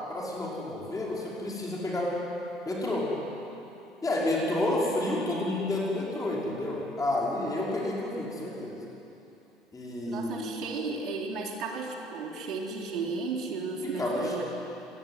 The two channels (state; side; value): normal; both; correlation 0.62